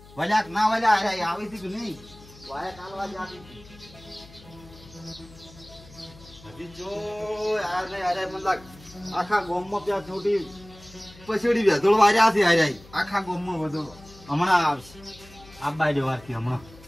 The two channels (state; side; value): noise; left; hum, 22 dB below the sound